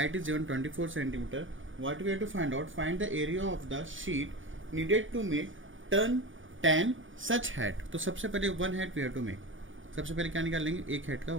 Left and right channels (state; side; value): late; left; 0.57 ms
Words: is given 24 centimetre. What we have to find out? Find the area of the sheet needed to make 10 such hat. तो सबसे पहले 1 hat we have to make. सबसे पहले क्या निकाल लेंगे? एक हैट का